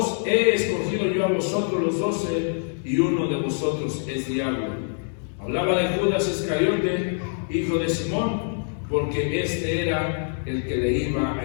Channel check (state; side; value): silent; right; digital silence